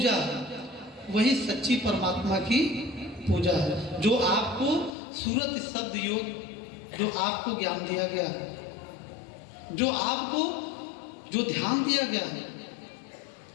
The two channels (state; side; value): drops out; right; at 5.0 s